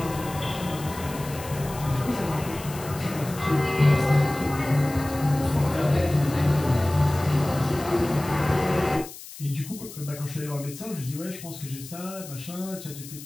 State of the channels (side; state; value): left; noise; hiss, 14 dB below the sound